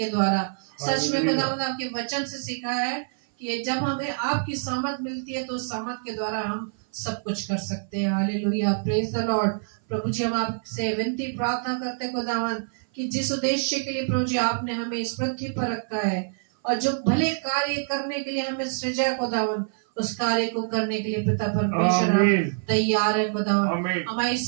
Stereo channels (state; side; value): silent; left; 57 dB below the other